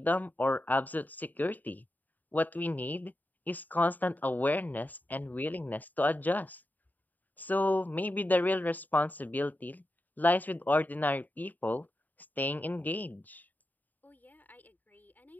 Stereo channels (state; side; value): late; right; 0.085 ms